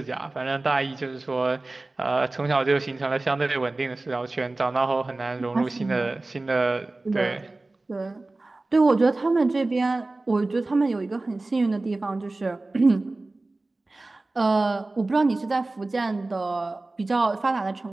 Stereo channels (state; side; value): quieter; left; 3.1 dB